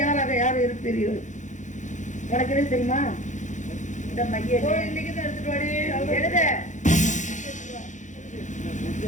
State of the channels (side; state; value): right; late; 0.35 ms